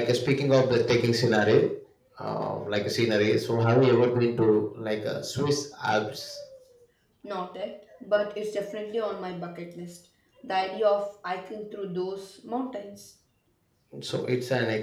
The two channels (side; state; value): both; identical; correlation 1.00